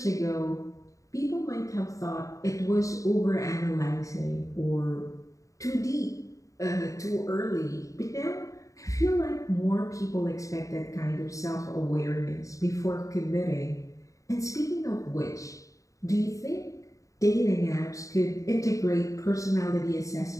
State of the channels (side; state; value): right; late; 0.16 ms